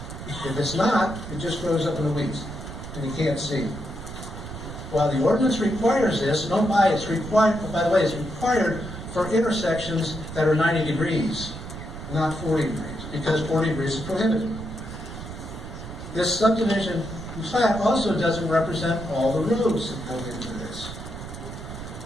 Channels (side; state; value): right; noise; rumble, 10 dB below the sound